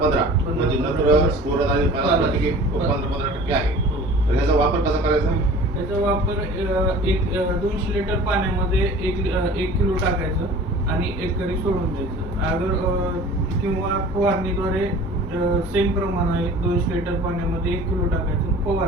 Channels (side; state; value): both; normal; correlation 0.44